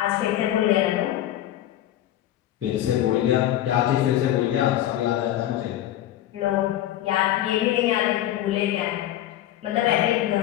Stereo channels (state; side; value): quieter; right; 12.9 dB